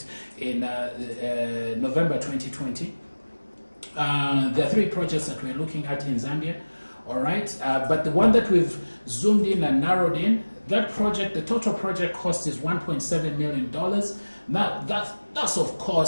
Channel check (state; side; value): inverted; both; correlation -1.00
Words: in November 2020. There are 3 projects that we're looking at in Zambia, all right? But the one that we've zoomed in and narrowed in, that project, the total project cost is $1.7 million. Now, that's of